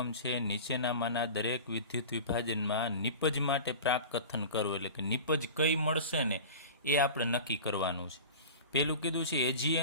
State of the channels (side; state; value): both; inverted; correlation -0.34